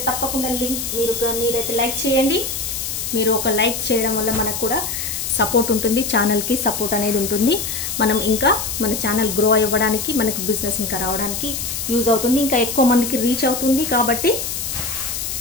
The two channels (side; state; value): left; noise; hiss, 4 dB below the sound